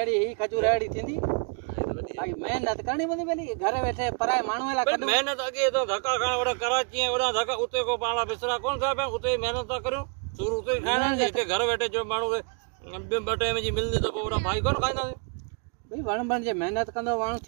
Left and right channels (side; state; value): left; quieter; 38.1 dB